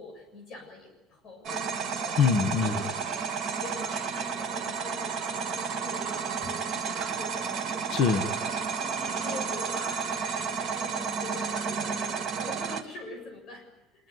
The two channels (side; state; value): both; normal; correlation 0.42